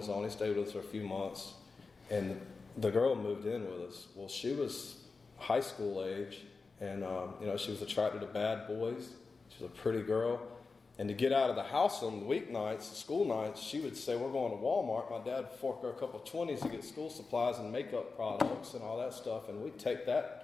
own. He stayed with us for a few months. And the girl moved in with us. Well, she was high school age. And, she was attracted to bad boys. She was a pretty girl. And to get out of the house on the weeknights, school nights, she would say, we're going to Walmart. My dad would fork her a couple of 20s to get school supplies and makeup products and all that stuff. And we'd take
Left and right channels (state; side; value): quieter; right; 4.3 dB